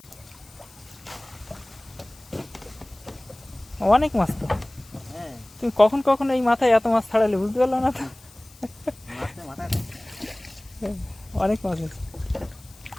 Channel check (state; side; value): noise; left; hiss, 24 dB below the sound